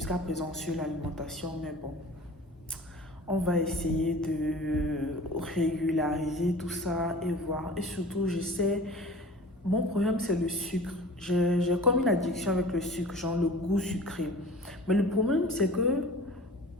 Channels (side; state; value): both; normal; correlation 0.41